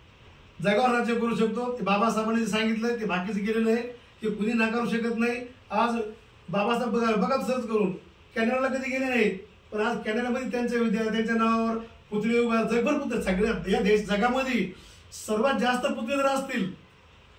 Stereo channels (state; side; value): identical; both; correlation 1.00